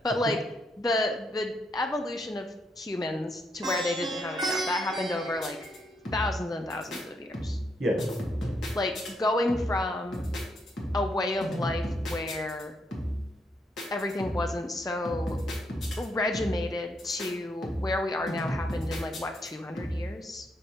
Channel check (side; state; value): both; normal; correlation 0.77